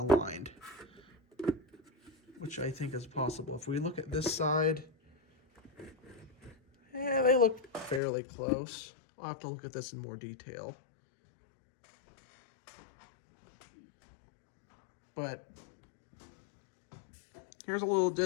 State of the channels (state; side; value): drops out; right; at 8.0 s